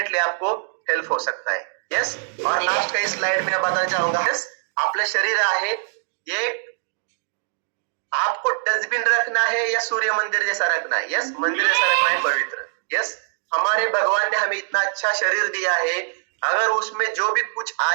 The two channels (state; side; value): silent; left; digital silence